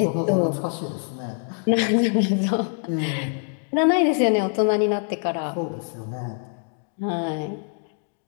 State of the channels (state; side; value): silent; right; 59 dB below the other